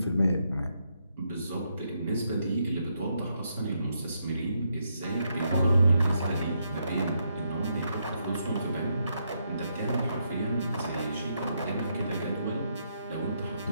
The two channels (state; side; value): inverted; both; correlation -0.79